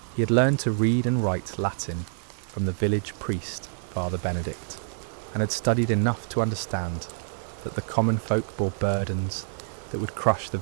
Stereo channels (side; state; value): left; silent; digital silence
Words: He had learned to read and write Latin from the village priest, Father Benedict, and had studied enough to understand that the common folk bore burdens that would crush the